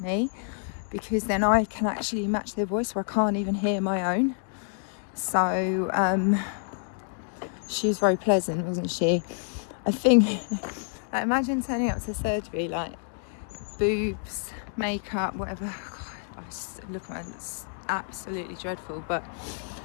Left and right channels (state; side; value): silent; right; 59 dB below the other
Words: me, because then I can actually match their voice where I can't even hear my own. So, she was very pleasant, wasn't she? I think, like, imagine turning up to surgery, like, boobs, makeup, whatever. I was looking at it, it's absolutely dreadful, but